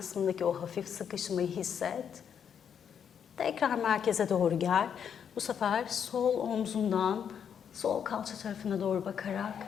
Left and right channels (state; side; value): quieter; right; 7.9 dB